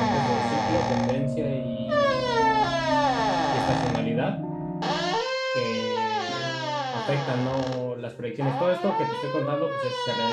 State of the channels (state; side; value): identical; both; correlation 1.00